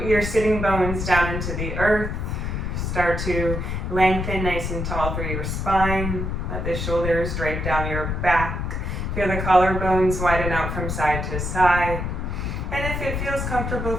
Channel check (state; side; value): noise; left; rumble, 3 dB below the sound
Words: your sitting bones down into the earth. Start to lengthen nice and tall through your spine. Let the shoulders drape down your back. Feel the collarbones widen out from side to side. And if it feels comfortable